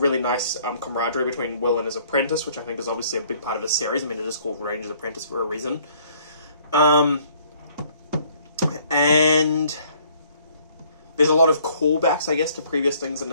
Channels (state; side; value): inverted; both; correlation -0.60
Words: nice camaraderie between Will and his apprentice, which I think is obviously a big part of his series. I mean, it is called Ranger's Apprentice for a reason. And there's a lot of callbacks, I guess, to previous things in